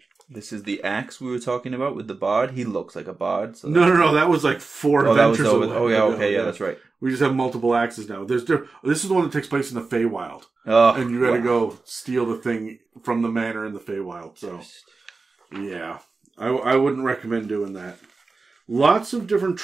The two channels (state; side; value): quieter; left; 4.0 dB